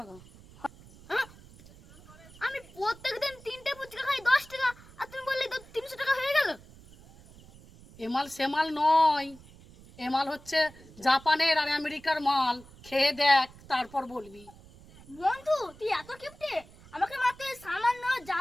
আমি প্রত্যেকদিন 3টে ফুচকা খাই 10 টাকা, আর তুমি বললে তো 300 টাকা হয়ে গেল। এমাল সেমাল নয়, এমাল হচ্ছে জাপানের আর আমেরিকার মাল। খেয়ে দেখ, তারপর বলবি। বন্ধু তুই এত কিপটে, আমাকে মাত্র সামান্য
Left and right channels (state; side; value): noise; right; rumble, 22 dB below the sound